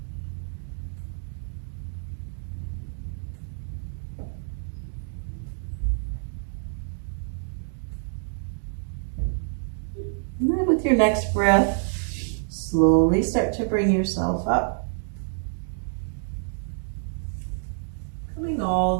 And then with your next breath, slowly start to bring yourself up. Coming all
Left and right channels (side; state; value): left; silent; digital silence